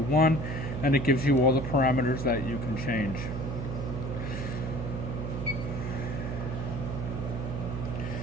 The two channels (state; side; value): noise; right; hum, 4 dB below the sound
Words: and it gives you all the parameters that you can change.